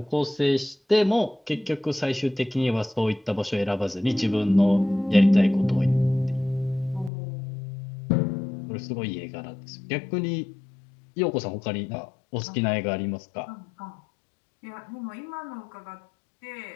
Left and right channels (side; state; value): right; drops out; at 7.1 s